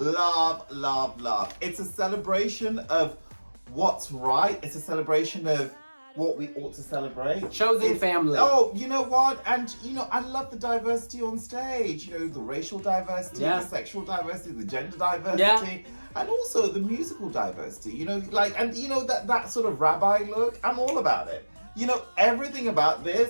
love, love. It's a celebration of what's right. It's a celebration of what we ought to celebrate. Chosen family. Oh, you know what? And, you know, I love the diversity on stage. You know, the racial diversity, the sexual diversity, the gender diversity, and also the musical diversity. You know, like, and, you know, that sort of rabbi look, I'm all about it. You know, everything about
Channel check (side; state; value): both; inverted; correlation -1.00